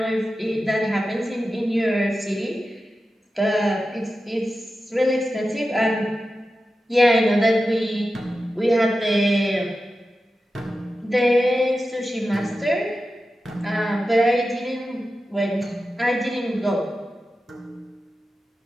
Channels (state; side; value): normal; both; correlation 0.92